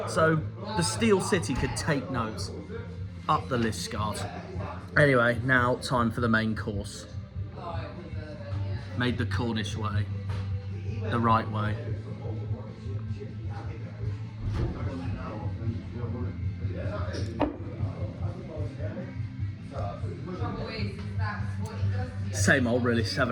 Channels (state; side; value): identical; both; correlation 1.00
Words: So the Steel City could take notes. Up the Liskeard. Anyway, now time for the main course. Made the Cornish way, the right way. Same old, really,